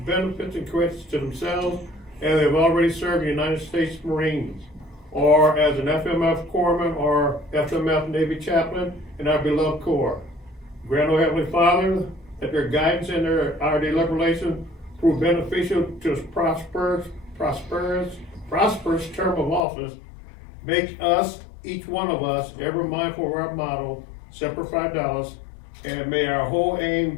benefits and credits to themselves as they've already served the United States Marines, or as an FMF corpsman or FMF Navy chaplain in our beloved Corps. Grant, O Heavenly Father, that their guidance and our deliberation prove beneficial to us prosperous term of office. Make us, each one of us, ever mindful of our motto, Semper Fidelis, and may our whole aim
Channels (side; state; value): right; drops out; at 19.6 s